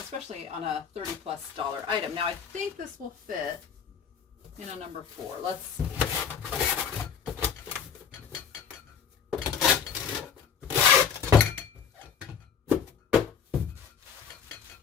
on a $30+ item. Now I think this will fit in a number 4. Let's see.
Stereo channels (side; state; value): right; quieter; 7.1 dB